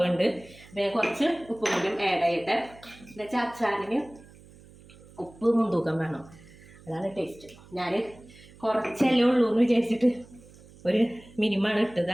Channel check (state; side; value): noise; right; hum, 23 dB below the sound